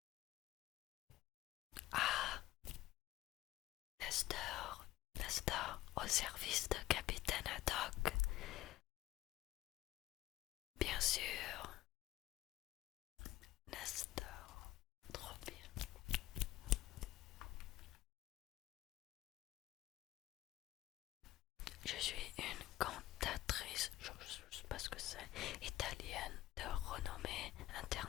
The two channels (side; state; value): right; quieter; 15.6 dB